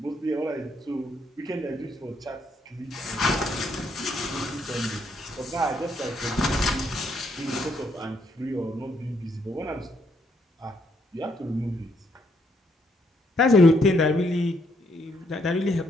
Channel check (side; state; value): both; normal; correlation 0.73